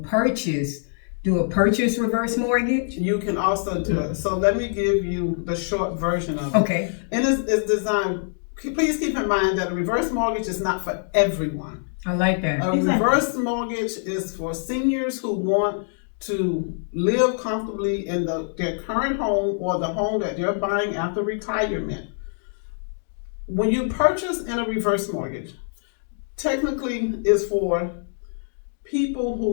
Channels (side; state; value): right; silent; digital silence